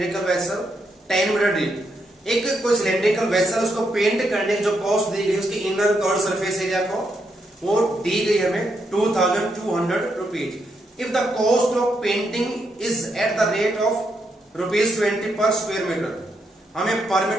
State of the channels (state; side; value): normal; both; correlation 0.80